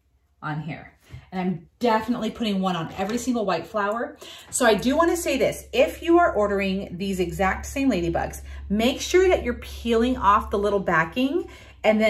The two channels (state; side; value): identical; both; correlation 1.00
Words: on here. And I'm definitely putting one on every single white flower. So I do want to say this, if you are ordering these exact same ladybugs, make sure that you're peeling off the little backing, and